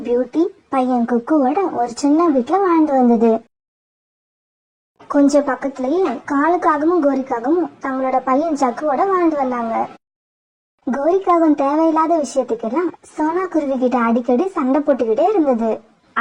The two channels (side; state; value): both; identical; correlation 1.00